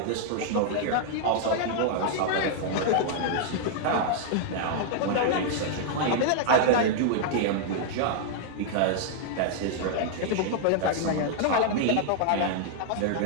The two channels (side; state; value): both; different; correlation -0.01